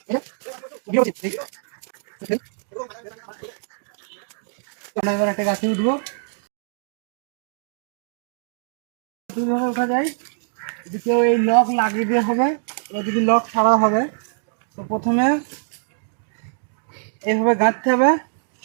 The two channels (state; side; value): silent; left; digital silence